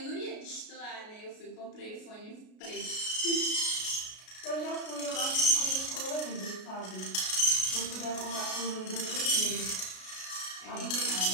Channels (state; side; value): late; right; 33 ms